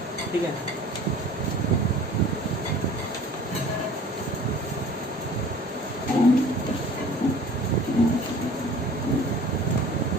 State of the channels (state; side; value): normal; both; correlation 0.46